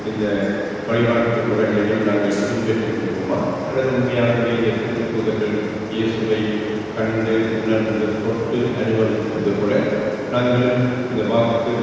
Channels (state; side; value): identical; both; correlation 1.00